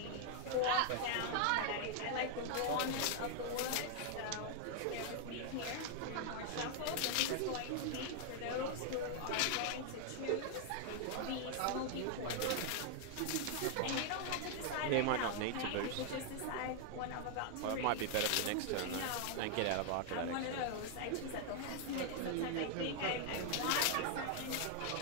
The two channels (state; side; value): different; both; correlation 0.00